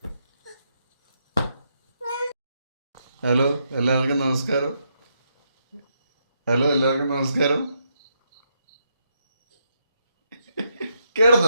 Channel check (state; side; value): inverted; both; correlation -0.79